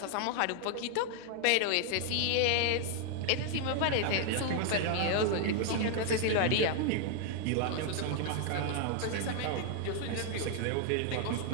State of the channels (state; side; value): different; both; correlation 0.00